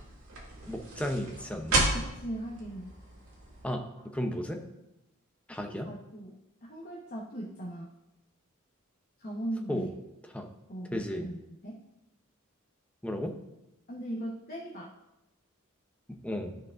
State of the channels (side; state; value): both; normal; correlation 0.57